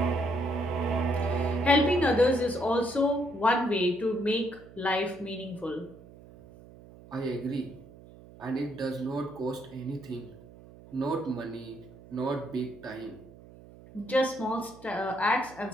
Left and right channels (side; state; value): right; noise; hum, 20 dB below the sound